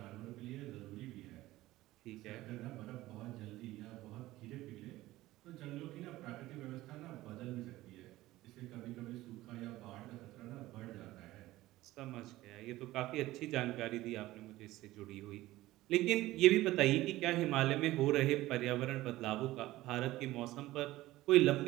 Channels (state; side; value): quieter; left; 17.0 dB